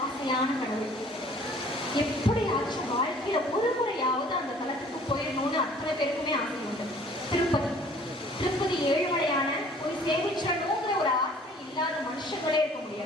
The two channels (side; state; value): both; normal; correlation 0.53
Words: ஆசையான கடவுள். எப்படியாச்சும் வாழ்க்கையில ஒரு முறையாவது அந்த தலத்துக்கு போயிடணும்னு அத்தனை பேருக்குமே ஆசை உண்டு. திருப்பதி ஏழுமலையான போய் சேமிச்சணுங்கிற ஒரு ஆசை இல்லாத மனுஷங்களே இருக்க